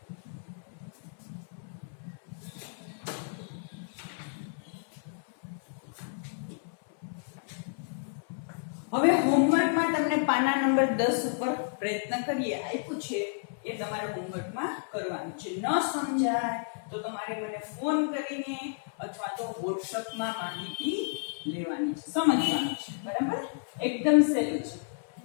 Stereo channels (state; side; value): silent; right; 57 dB below the other